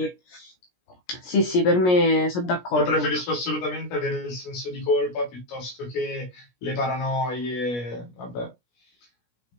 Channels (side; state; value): right; late; 17 ms